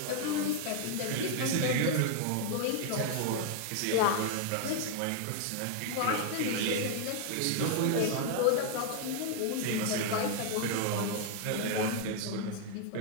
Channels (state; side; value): different; both; correlation 0.00